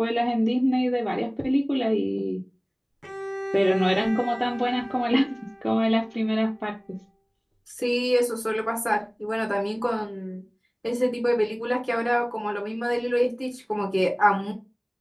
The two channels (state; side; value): identical; both; correlation 1.00